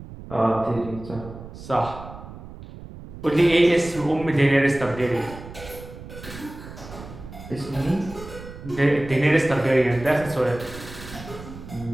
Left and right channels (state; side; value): noise; right; rumble, 14 dB below the sound